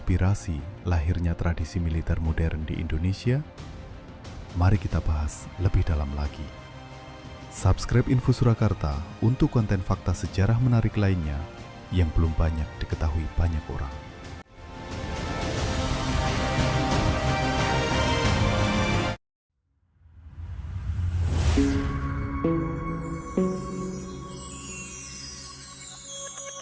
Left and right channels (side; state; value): both; identical; correlation 1.00